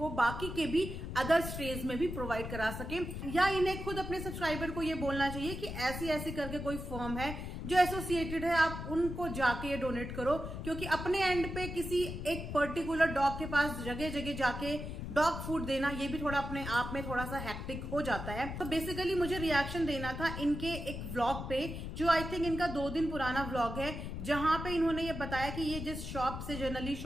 बाकी के भी अदर स्ट्रेज में भी प्रोवाइड करा सके, या इन्हें खुद अपने सब्सक्राइबर को ये बोलना चाहिए कि ऐसी ऐसी करके कोई फर्म है जो एसोसिएटेड है, आप उनको जाके ये डोनेट करो। क्योंकि अपने एंड पे किसी एक पर्टिकुलर डॉग के पास जगह जगह जाके डॉग फूड देना ये भी थोड़ा अपने आप में थोड़ा सा हैक्टिक हो जाता है। तो बेसिकली मुझे रिएक्शन देना था इनके एक व्लॉग पे जो आई थिंक इनका 2 दिन पुराना व्लॉग है, जहां पे इन्होंने ये बताया कि ये जिस शॉप से जनरली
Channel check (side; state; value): left; noise; rumble, 6 dB below the sound